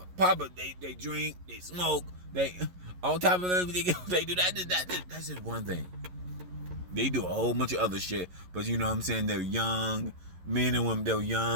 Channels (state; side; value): late; left; 11 ms